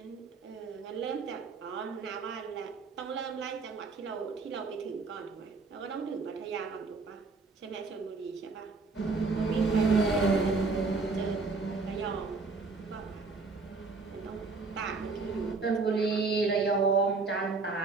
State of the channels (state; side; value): quieter; left; 4.2 dB